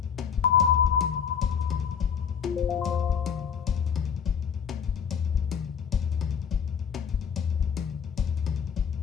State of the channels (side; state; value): right; quieter; 7.2 dB